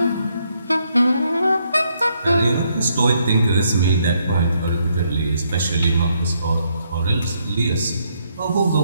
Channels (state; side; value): inverted; both; correlation -0.74